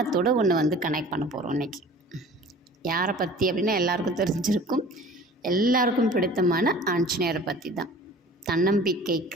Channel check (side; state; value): both; normal; correlation 0.45